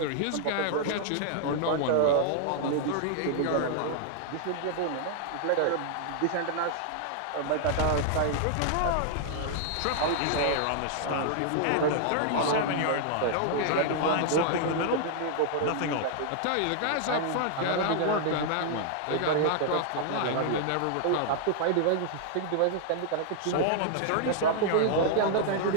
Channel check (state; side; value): different; both; correlation -0.01